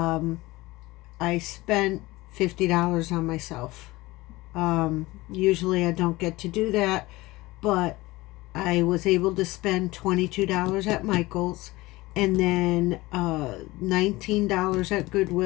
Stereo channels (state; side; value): quieter; right; 20.2 dB